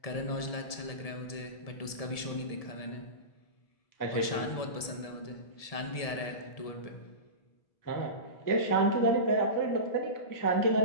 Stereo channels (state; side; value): late; right; 1.7 ms